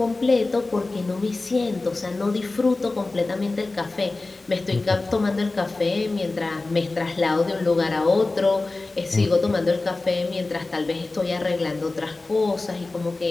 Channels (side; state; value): right; quieter; 3.3 dB